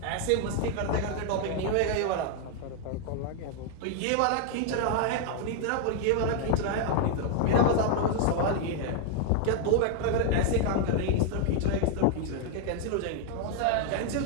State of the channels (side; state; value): both; different; correlation 0.00